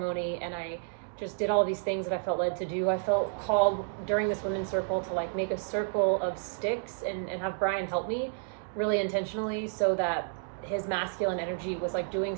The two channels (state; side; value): silent; left; digital silence